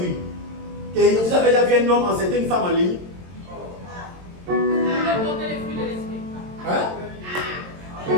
Et vous avez déjà vu un homme enceinter une femme en ligne? Hein?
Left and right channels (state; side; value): late; left; 22 ms